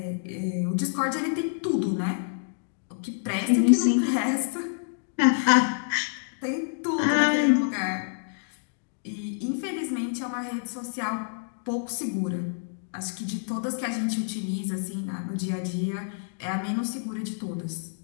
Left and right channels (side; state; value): right; silent; digital silence